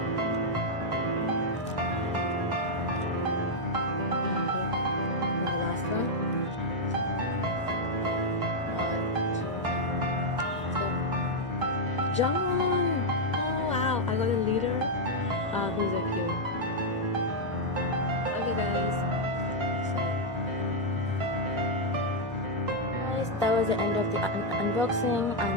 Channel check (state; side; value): normal; both; correlation -0.02